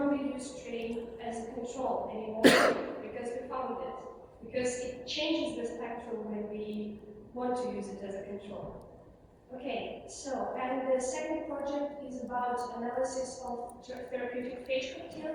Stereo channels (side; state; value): both; identical; correlation 1.00